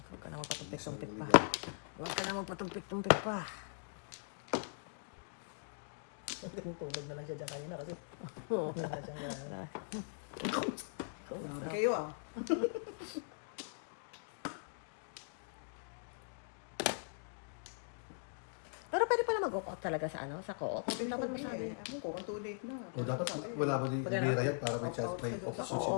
Huwag ka na magpatumpik-tumpik Sorry, pa. naligaw. Huwag ka na magpatumpik-tumpik pa. Tulog na lang siya dyan kanina kasi wala na siyang Grabe kayo ah. Pero pwede pala mag-walk out talaga sa ano, sa co-op. Dapat masabi. Ano ko, kung too late na. O dapat wala mo di Pag ano? kaya para may chance may option siya,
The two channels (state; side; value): silent; right; digital silence